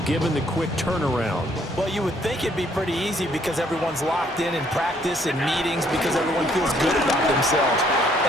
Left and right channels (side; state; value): both; normal; correlation 0.66